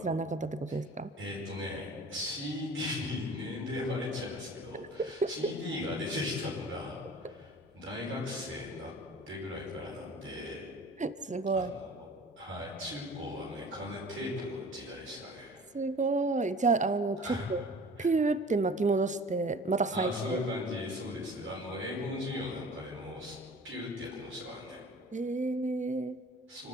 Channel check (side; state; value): both; normal; correlation 0.44